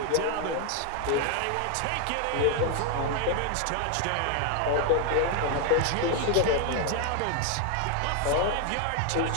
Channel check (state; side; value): different; both; correlation 0.00